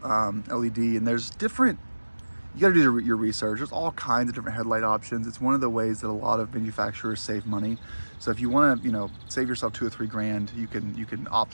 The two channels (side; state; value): both; inverted; correlation -1.00